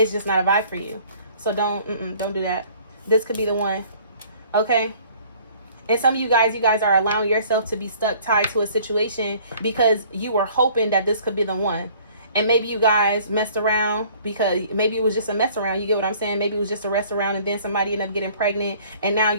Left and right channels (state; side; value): inverted; both; correlation -0.55